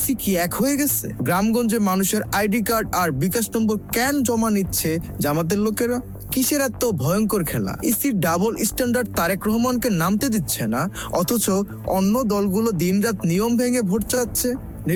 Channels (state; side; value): identical; both; correlation 1.00